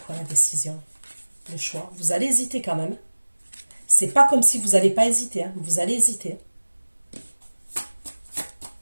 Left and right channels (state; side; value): inverted; both; correlation -1.00